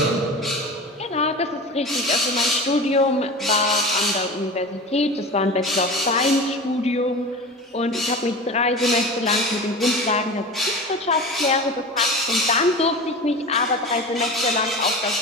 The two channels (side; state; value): both; normal; correlation 0.32